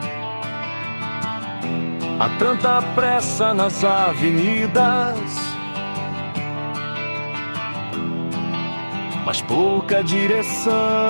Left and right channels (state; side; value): inverted; both; correlation -1.00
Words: Há tanta pressa nas avenidas, mas pouca